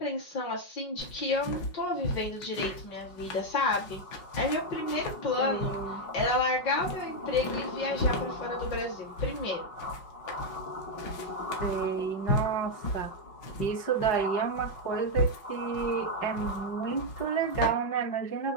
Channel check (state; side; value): late; right; 5.5 ms